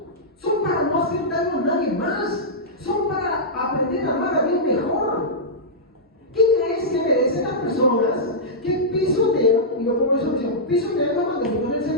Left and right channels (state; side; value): normal; both; correlation -0.12